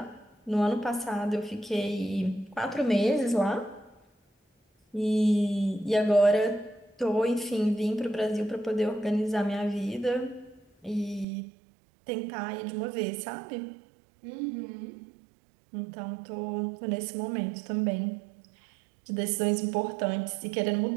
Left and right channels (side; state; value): left; drops out; at 11.2 s